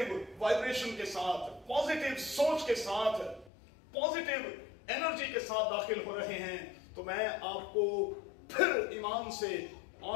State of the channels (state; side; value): drops out; right; at 3.5 s